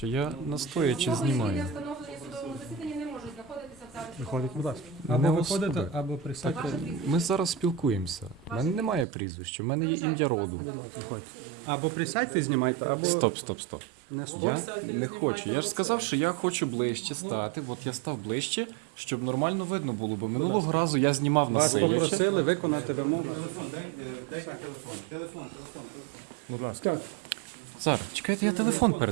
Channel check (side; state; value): left; drops out; at 9.1 s